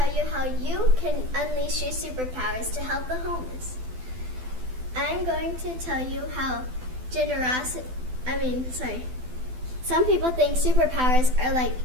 you how you can unleash your superpowers to help the homeless. I'm going to tell you how some people think superpowers are like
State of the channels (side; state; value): left; late; 12 ms